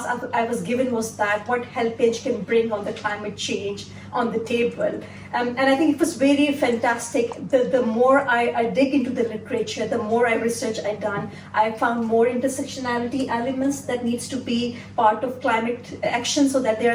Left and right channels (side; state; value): both; identical; correlation 1.00